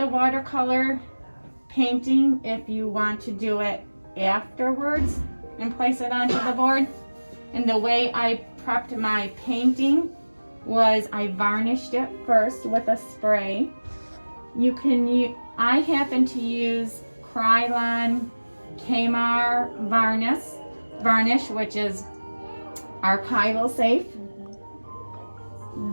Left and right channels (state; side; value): inverted; both; correlation -1.00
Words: watercolor painting if you want to do it afterwards and place it onto the board. And the way I prepped my painting was I varnished it first with a spray. I happen to use Krylon Keil varnish, which is archival safe.